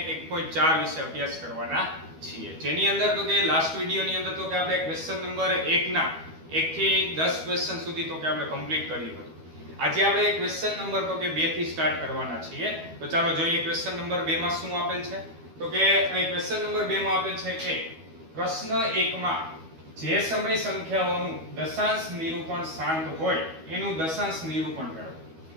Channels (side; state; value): left; late; 12 ms